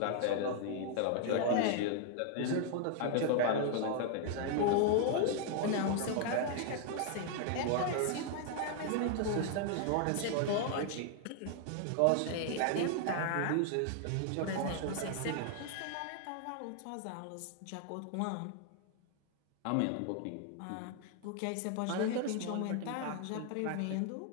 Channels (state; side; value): different; both; correlation 0.00